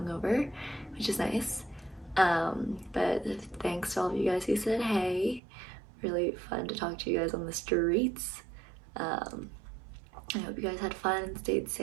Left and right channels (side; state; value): left; drops out; at 5.4 s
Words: which is nice. But thanks to all of you guys who said hey. Really fun to talk to you guys on the streets. I hope you guys had fun and stayed